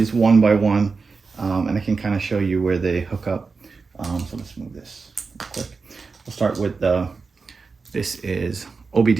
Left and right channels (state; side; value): quieter; left; 4.5 dB